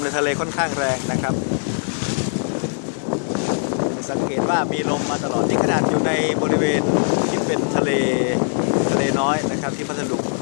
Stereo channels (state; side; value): silent; right; digital silence